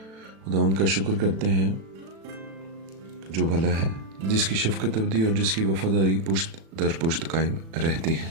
खुदावंद का शुक्र करते हैं जो भला है, जिसकी शफ़क़त अबदी और जिसकी वफ़ादारी पुश्त दर पुश्त कायम रहती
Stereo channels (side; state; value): left; late; 36 ms